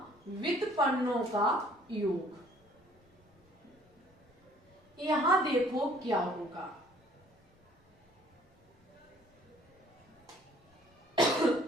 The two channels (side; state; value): both; normal; correlation 0.58